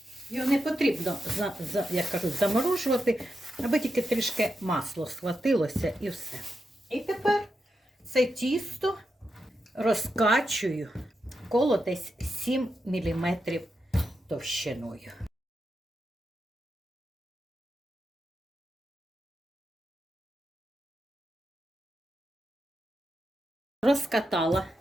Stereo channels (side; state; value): both; normal; correlation 0.87